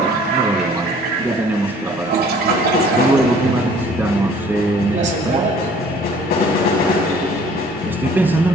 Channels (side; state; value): both; normal; correlation 0.53